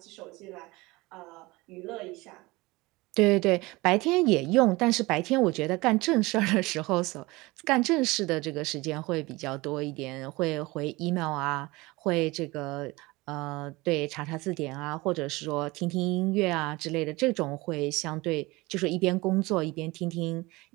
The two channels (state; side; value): quieter; left; 22.2 dB